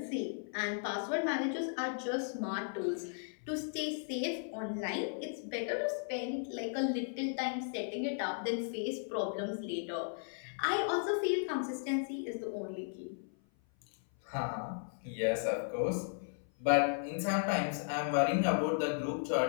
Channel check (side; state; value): right; silent; 54 dB below the other